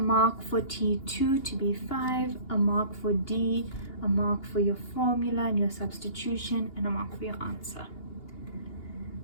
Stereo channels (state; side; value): late; right; 2.8 ms